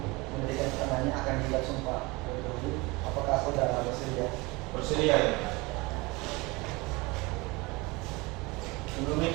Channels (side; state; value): left; quieter; 24.3 dB